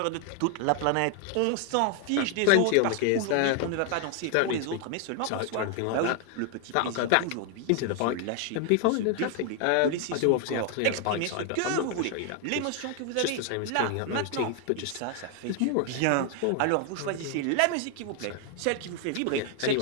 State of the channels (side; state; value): both; different; correlation 0.00